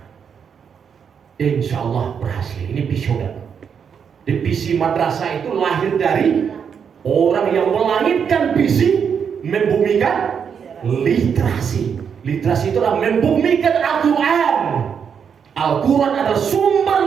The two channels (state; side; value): quieter; left; 7.1 dB